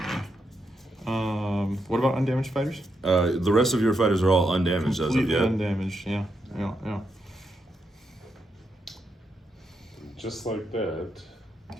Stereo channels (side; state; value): both; normal; correlation 0.82